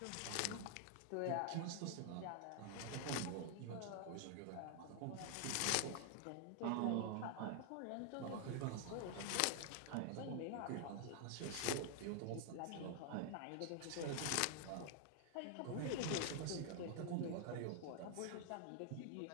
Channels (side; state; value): both; different; correlation 0.00